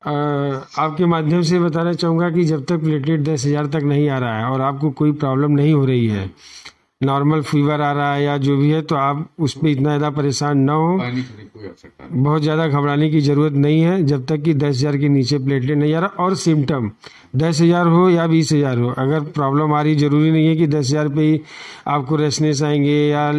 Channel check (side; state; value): both; identical; correlation 1.00